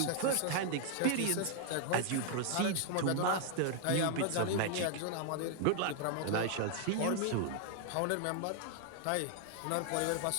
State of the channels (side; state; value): both; different; correlation 0.00